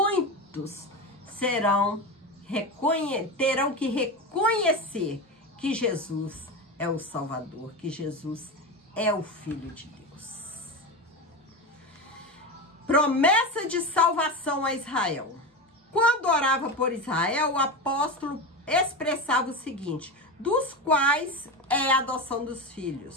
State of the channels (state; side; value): normal; both; correlation 0.20